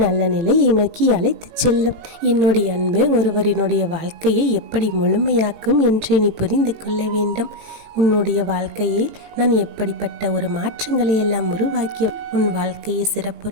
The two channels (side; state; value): left; late; 18 ms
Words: நல்ல நிலையை நோக்கி அழைத்து செல்லும். என்னுடைய அன்பு ஒருவரினுடைய வாழ்க்கையை எப்படி முழுமையாக்கும் என்று நீ புரிந்து கொள்ள வேண்டும். உன்னுடைய வாழ்க்கையில் நான் எப்படிப்பட்ட ஒரு மாற்றங்களை எல்லாம் உருவாக்கி உன் வாழ்க்கையை சிறப்புற